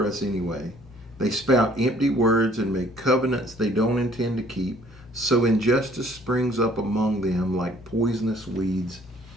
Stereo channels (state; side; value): normal; both; correlation 0.59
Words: us anyway?' They spout empty words and make covenants they don't intend to keep. So injustice springs up among them like poisonous weeds